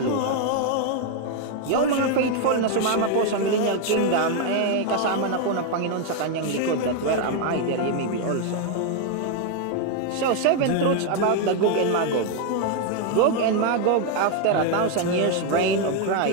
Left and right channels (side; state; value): both; different; correlation 0.01